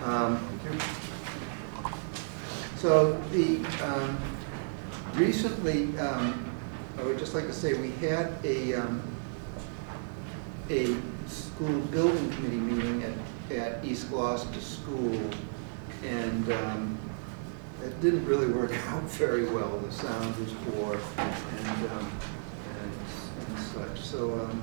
So recently, I would just like to say we had a school building committee meeting at East Gloucester School, and it didn't really work out very well. The sound was poor and such. So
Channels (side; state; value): left; silent; digital silence